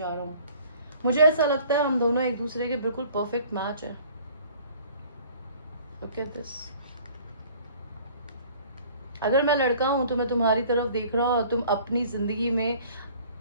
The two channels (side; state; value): both; inverted; correlation -0.52